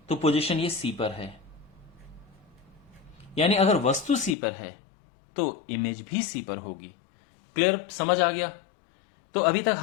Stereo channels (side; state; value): right; drops out; at 4.4 s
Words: तो पोजीशन ये सी पर है, यानी अगर वस्तु सी पर है तो इमेज भी सी पर होगी। क्लियर, समझ आ गया? तो अभी तक